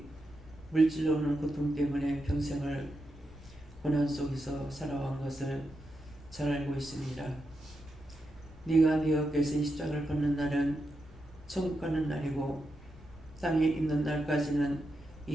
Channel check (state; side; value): normal; both; correlation 0.86